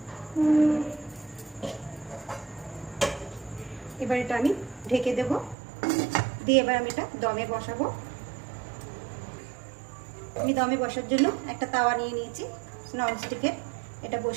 এবার এটা আমি ঢেকে দেব, দিয়ে এবার আমি এটা দমে বসাবো। আমি দমে বসার জন্য একটা তাওয়া নিয়ে নিয়েছি ননস্টিকের, এটা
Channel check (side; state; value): left; drops out; at 5.6 s